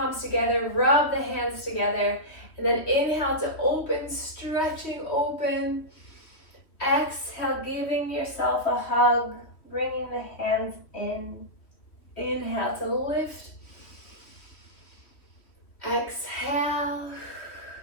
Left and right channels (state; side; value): late; right; 3.1 ms